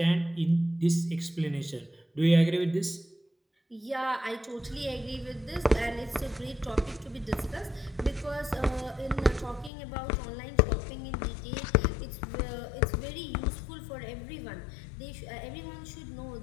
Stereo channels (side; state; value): right; drops out; at 9.7 s